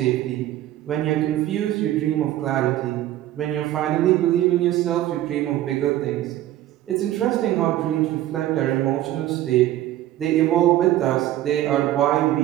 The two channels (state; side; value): quieter; left; 13.8 dB